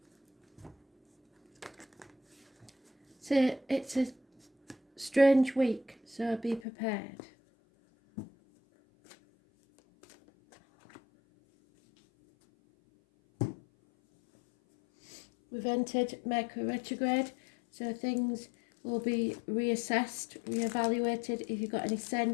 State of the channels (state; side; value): drops out; right; at 6.6 s